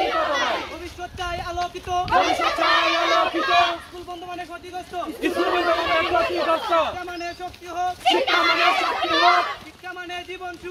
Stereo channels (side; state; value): both; identical; correlation 1.00